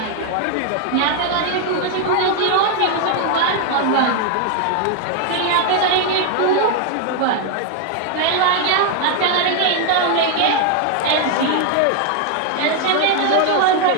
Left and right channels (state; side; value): different; both; correlation 0.00